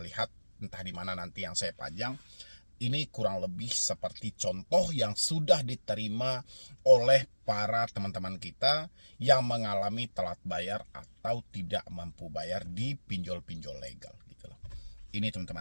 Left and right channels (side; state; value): both; inverted; correlation -1.00